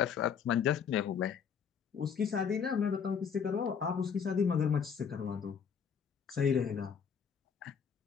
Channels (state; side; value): quieter; right; 7.0 dB